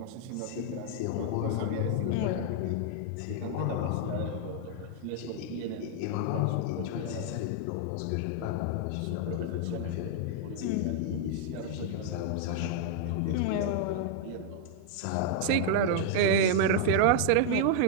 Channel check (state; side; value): different; both; correlation 0.00